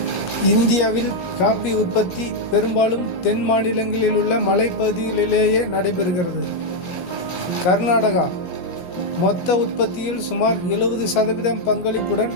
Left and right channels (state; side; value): late; right; 17 ms